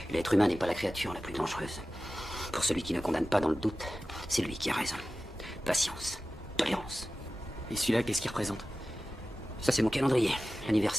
L'être humain n'est pas la créature la plus dangereuse. Pour celui qui ne condamne pas dans le doute, c'est lui qui a raison. Patience, tolérance. Et celui-là, qu'est-ce qu'il représente? Ça, c'est mon calendrier,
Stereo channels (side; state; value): both; normal; correlation 0.95